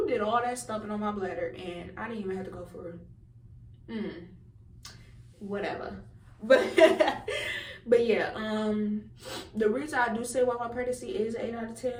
did all that stuffing on my bladder, and I didn't even have to go for whatever. But yeah, the reason I do say why my pregnancy is 8 out of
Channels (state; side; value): identical; both; correlation 1.00